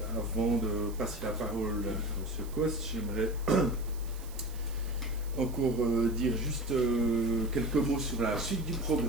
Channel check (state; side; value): noise; right; hiss, 19 dB below the sound